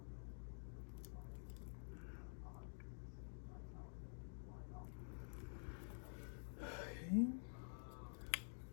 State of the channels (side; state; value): right; silent; digital silence